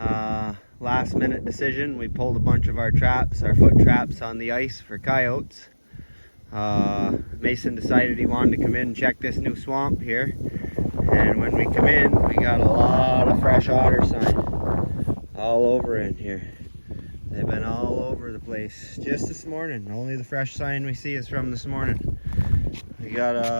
Last minute decision. We pulled a bunch of our traps, our foot traps on the ice for coyotes. Mason decided he wanted to come in and check this new swamp here. And when we come in, we got a lot of fresh otter sign all over in here. They've been all over the place just this morning. Only the fresh sign we see is from this morning. We got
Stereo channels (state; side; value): inverted; both; correlation -1.00